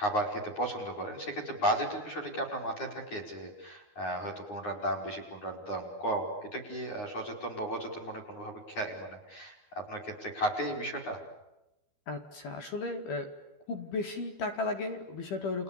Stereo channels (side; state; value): right; late; 12 ms